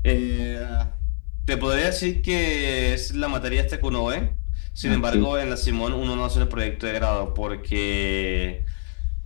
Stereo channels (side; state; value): right; silent; digital silence